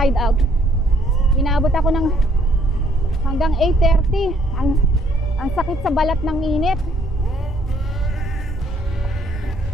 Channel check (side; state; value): both; normal; correlation 0.65